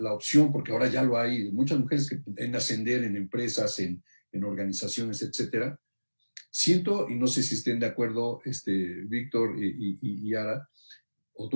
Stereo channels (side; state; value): both; inverted; correlation -1.00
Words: opción, porque ahora ya lo hay, muchas mujeres que en ascender en empresas, en organizaciones, etcétera, siento, y no sé si estén de acuerdo, Víctor y Ara, o